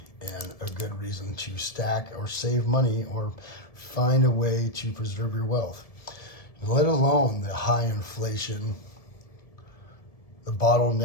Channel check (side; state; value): right; late; 1.7 ms